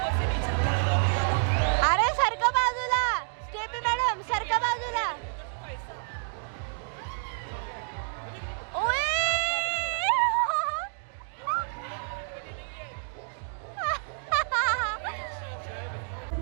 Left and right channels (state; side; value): silent; left; digital silence